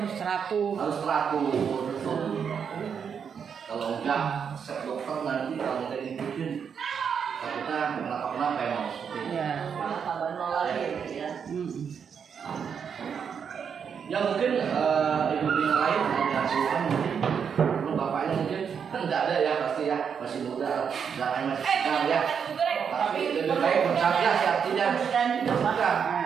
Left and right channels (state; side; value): quieter; left; 7.0 dB